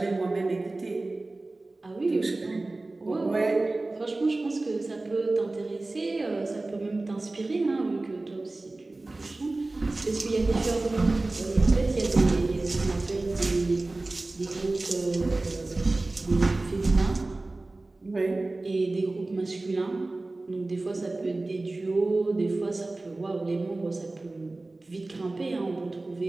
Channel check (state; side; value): quieter; left; 3.0 dB